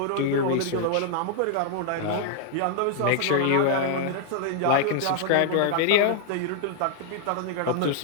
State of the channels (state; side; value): different; both; correlation -0.01